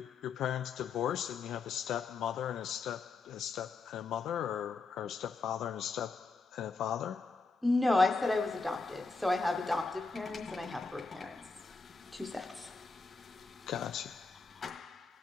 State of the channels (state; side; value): quieter; right; 4.2 dB